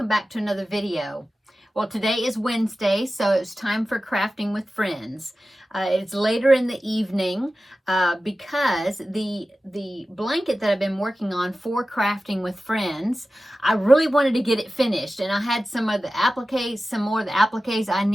back to another video. Well, today is Wednesday, so it's time for crafting with friends. It's later in the evening because the blanket that I've been working on for crafting with friends, I really wanted to get it finished, and I had some more of the appliques I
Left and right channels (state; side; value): normal; both; correlation 0.95